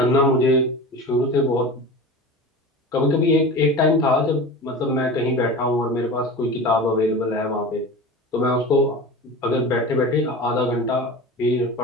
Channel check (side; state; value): both; normal; correlation 0.32